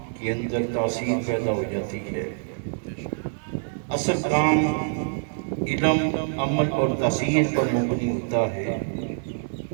کے اندر تاثیر پیدا ہو جاتی ہے۔ اصل کام علم، عمل اور تاثیر پر مبنی ہوتا ہے۔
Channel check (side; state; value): left; silent; digital silence